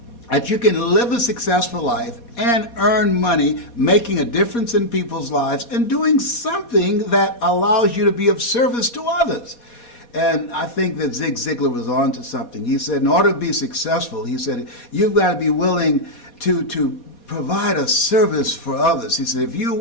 that you can live a successful life and earn money, making a difference in people's lives and doing something that allows you to be of service to others. And I think that Zig Ziglar was on to something. He said, in order to be successful, he said, you've got to be willing to provide a service for others. He said, if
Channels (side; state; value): right; late; 4.2 ms